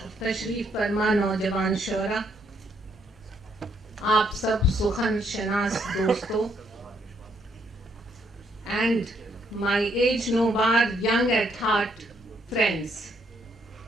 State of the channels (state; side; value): normal; both; correlation 0.72